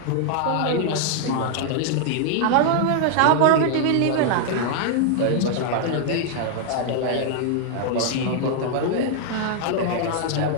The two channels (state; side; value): different; both; correlation 0.00